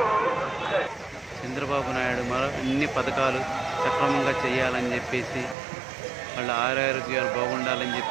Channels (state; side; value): drops out; left; at 5.6 s